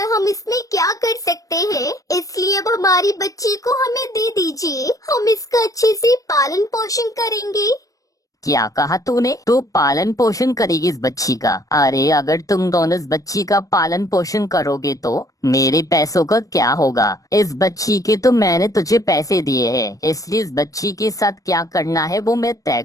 हम इसमें क्या कर सकते हैं? इसलिए अब हमारी बच्ची को हमें दे दीजिए। हम इसका अच्छे से पालन पोषण करेंगे। क्या कहा तूने? तू पालन पोषण करेगी इस बच्ची का? अरे अगर तुम दोनों इस बच्ची का पालन पोषण करोगे तो मेरे पैसों का क्या होगा? इस बच्ची के तो मैंने तुझे पैसे दिए हैं, इसलिए इस बच्ची के साथ क्या करना है वो मैं तय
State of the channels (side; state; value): right; late; 0.16 ms